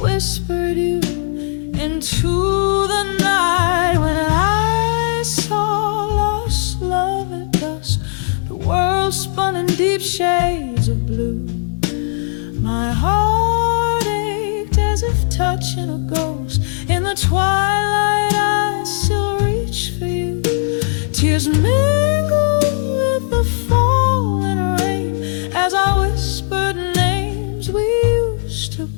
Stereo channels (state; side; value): silent; right; 57 dB below the other